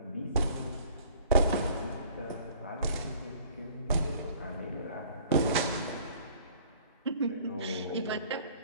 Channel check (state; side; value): inverted; both; correlation -0.53